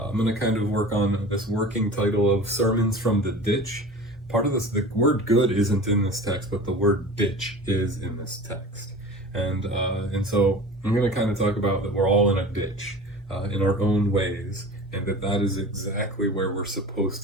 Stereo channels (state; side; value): normal; both; correlation 0.37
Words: going to kind of work on this working title of Sermons from the Ditch. Part of this, the word good isn't in this text, but the word ditch is in this text. And so I'm going to kind of talk about that we're all in a ditch in our own ways, and that is exactly where we're supposed